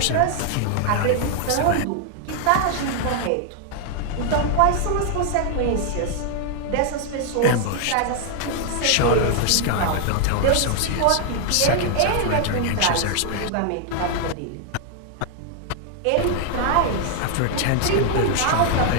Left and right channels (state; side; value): different; both; correlation 0.00